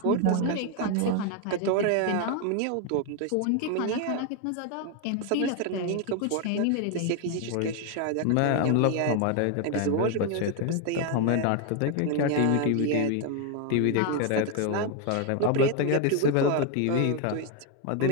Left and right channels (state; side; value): different; both; correlation 0.01